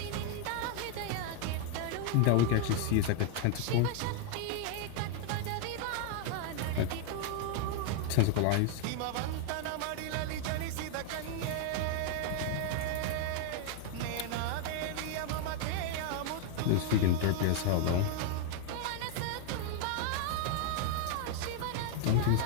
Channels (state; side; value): different; both; correlation 0.00